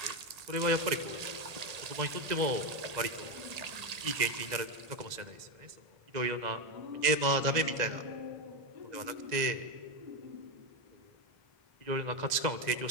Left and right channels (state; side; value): late; left; 1.9 ms